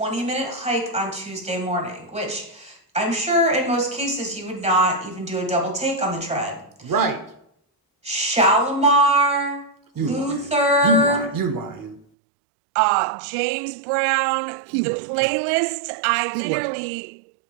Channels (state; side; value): drops out; left; at 12.1 s